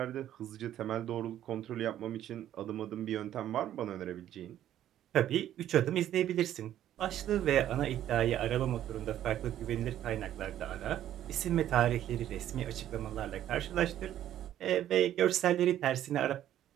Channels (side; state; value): left; quieter; 11.8 dB